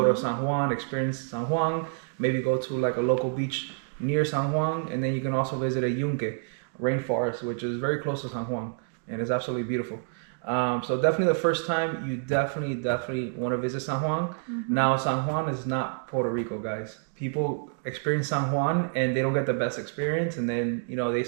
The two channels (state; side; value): silent; left; digital silence